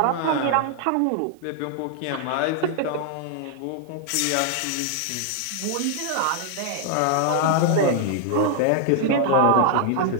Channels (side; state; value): both; different; correlation 0.00